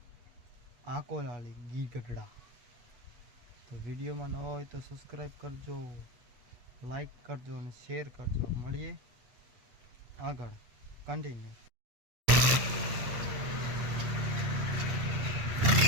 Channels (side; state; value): left; late; 8.8 ms